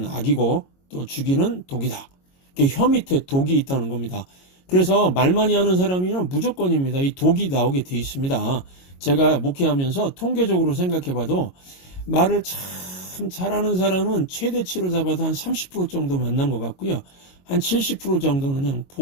악이고 또 죽이는 독이다. 혀 밑에 독이 있다는 겁니다. 그래서 말 많이 하는 사람이면 무조건입니다. 이 독이 나오게 돼 있습니다. 제가 목회하면서 통계적으로 생각해봐도 말을 참 잘하는 사람은 최대치로 잡아도 한 30% 정도 만난 것 같고요. 한 70% 정도는 그냥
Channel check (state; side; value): late; right; 22 ms